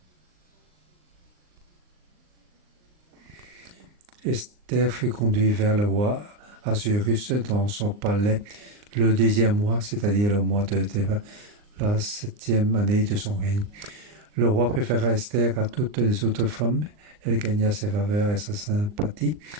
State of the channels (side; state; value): left; late; 39 ms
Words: Esther fut conduite vers le roi Assyrus dans son palais le 10e mois, c'est-à-dire le mois de Théba, la 7e année de son règne. Le roi préféra Esther à toutes les autres femmes. Elle gagna sa faveur et sa sympathie,